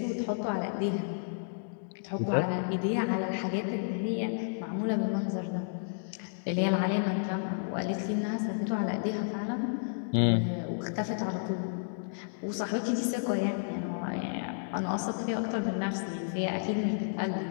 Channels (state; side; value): silent; right; digital silence